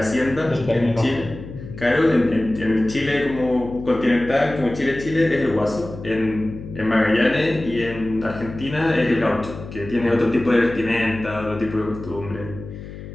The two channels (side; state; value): left; noise; hum, 12 dB below the sound